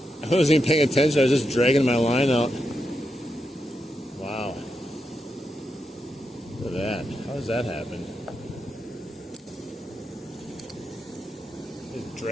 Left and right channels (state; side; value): normal; both; correlation 0.85